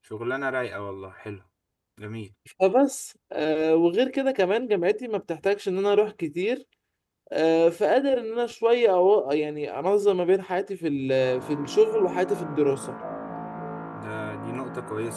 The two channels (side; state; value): both; identical; correlation 1.00